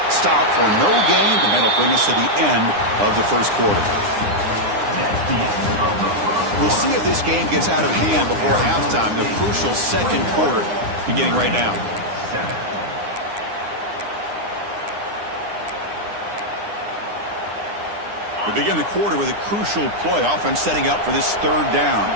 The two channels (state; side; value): late; left; 9.8 ms